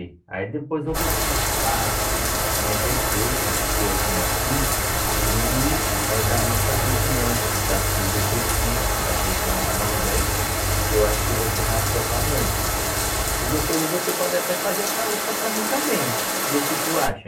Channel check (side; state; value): both; identical; correlation 1.00